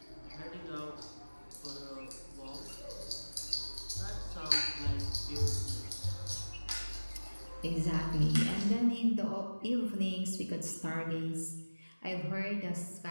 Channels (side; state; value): both; inverted; correlation -1.00